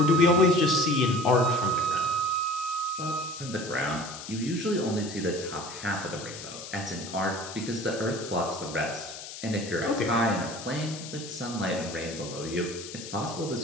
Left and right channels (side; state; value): left; noise; hiss, 11 dB below the sound